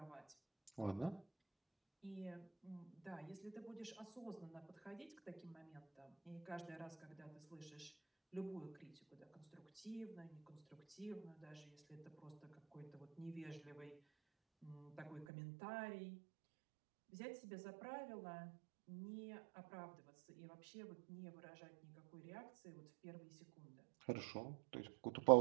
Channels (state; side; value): drops out; left; at 15.2 s